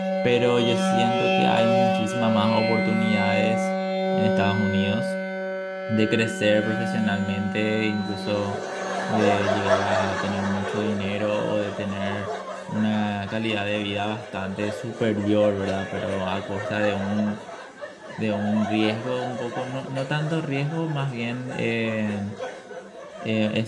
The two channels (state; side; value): identical; both; correlation 1.00